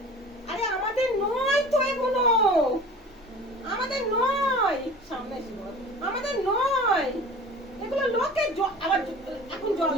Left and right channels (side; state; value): both; normal; correlation 0.41